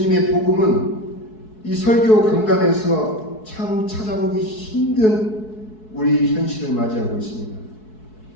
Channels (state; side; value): late; right; 4.6 ms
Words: 복음은 이 설교 강단에서 참 찾아보기 힘든 우리 현실을 맞이하고 있습니다.